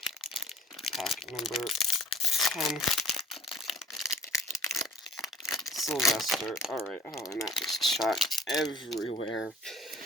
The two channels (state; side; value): normal; both; correlation 0.51